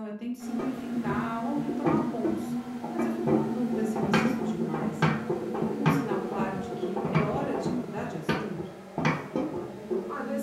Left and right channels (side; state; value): both; identical; correlation 1.00